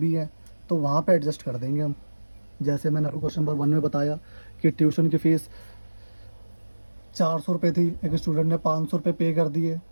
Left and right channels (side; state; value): both; inverted; correlation -1.00